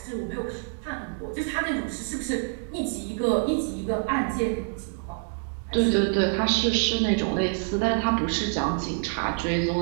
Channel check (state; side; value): silent; left; 59 dB below the other